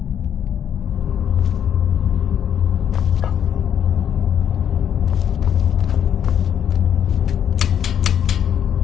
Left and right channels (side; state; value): right; quieter; 9.0 dB